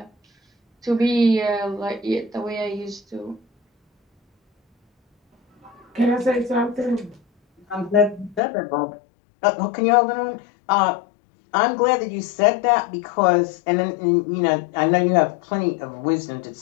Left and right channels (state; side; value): drops out; right; at 8.4 s